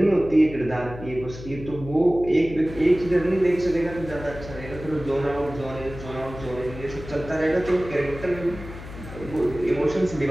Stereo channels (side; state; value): left; noise; hum, 13 dB below the sound